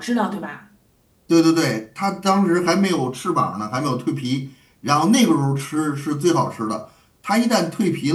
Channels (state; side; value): identical; both; correlation 1.00